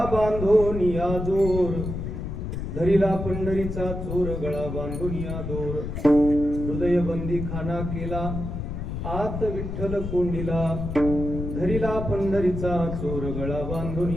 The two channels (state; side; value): noise; left; rumble, 5 dB below the sound